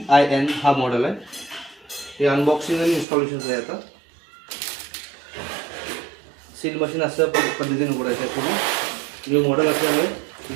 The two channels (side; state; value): left; drops out; at 3.1 s